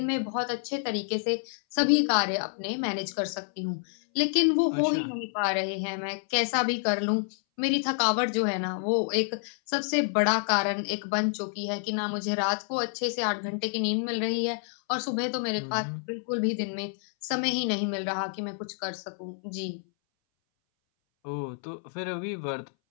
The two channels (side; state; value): right; silent; 59 dB below the other